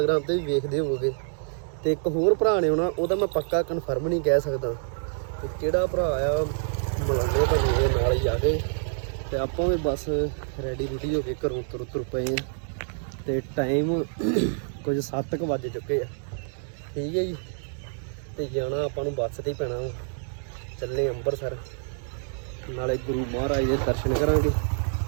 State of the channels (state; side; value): silent; left; digital silence